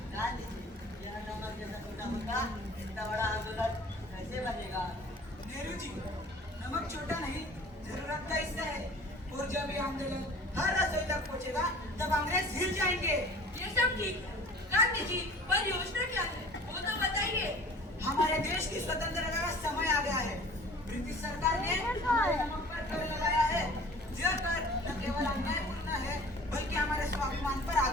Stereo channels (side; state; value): both; normal; correlation 0.46